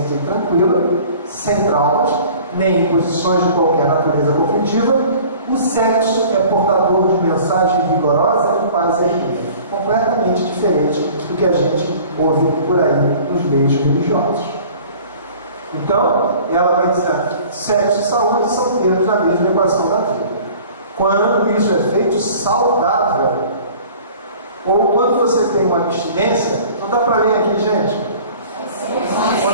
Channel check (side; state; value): both; inverted; correlation -0.47